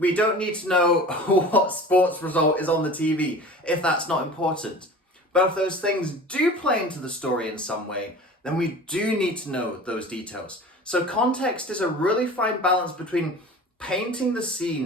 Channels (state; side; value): normal; both; correlation 0.39